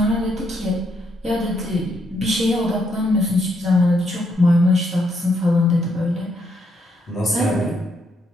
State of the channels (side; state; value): both; normal; correlation 0.75